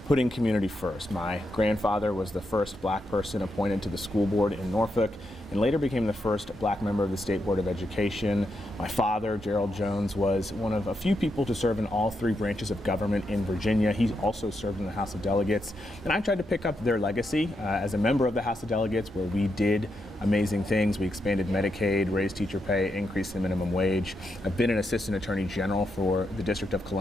putting community first. My grandfather was the first black person appointed to the school board in Norfolk and later became the first black member of the State Board of Education. My father, Gerald Jones, was one of a few people to serve in all three branches of government in Virginia. He also served in the House of Delegates, and I tried to pick up their legacy as a member of the House of Delegates, where we did amazing things. We expanded Medicaid, raised teacher pay, increased the minimum wage. I've been an assistant attorney general for the District of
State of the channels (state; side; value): normal; both; correlation 0.83